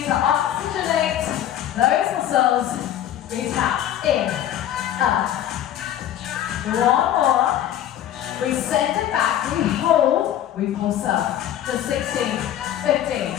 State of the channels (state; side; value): quieter; right; 11.4 dB